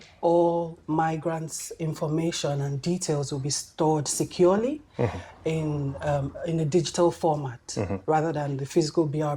all migrants' information and details will be stored securely in a digital format rather than the physical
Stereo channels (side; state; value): both; identical; correlation 1.00